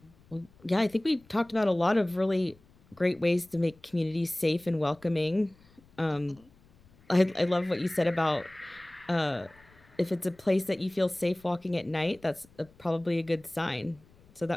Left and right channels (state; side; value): noise; left; rumble, 29 dB below the sound